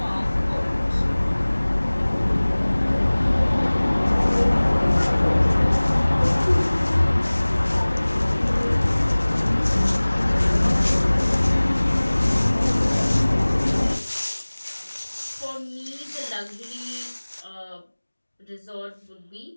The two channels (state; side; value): inverted; both; correlation -1.00